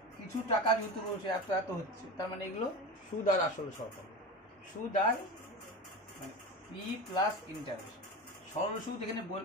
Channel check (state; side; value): normal; both; correlation 0.26